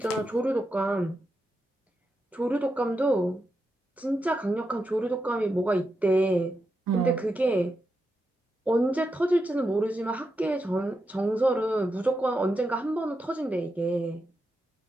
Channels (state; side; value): normal; both; correlation 0.86